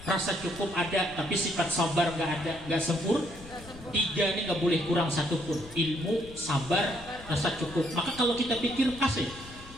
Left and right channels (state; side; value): noise; left; rumble, 17 dB below the sound